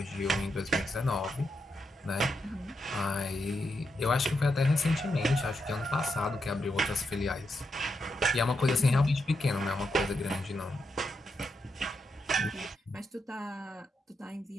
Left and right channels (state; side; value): normal; both; correlation 0.84